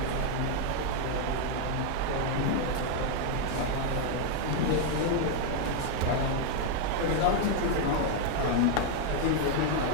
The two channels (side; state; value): both; different; correlation 0.00